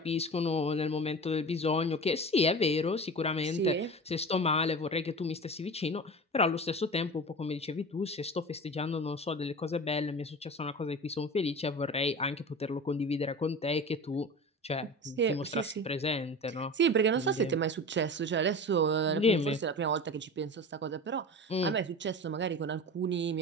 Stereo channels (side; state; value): both; normal; correlation 0.32